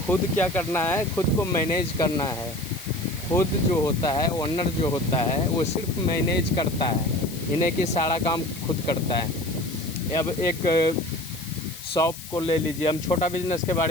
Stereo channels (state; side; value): noise; left; hiss, 13 dB below the sound